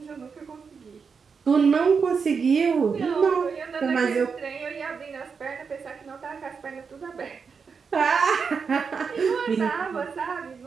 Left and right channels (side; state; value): left; quieter; 5.7 dB